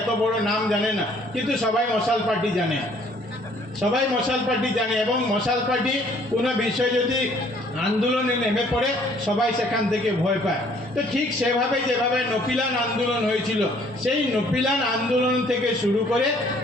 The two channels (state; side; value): normal; both; correlation 0.60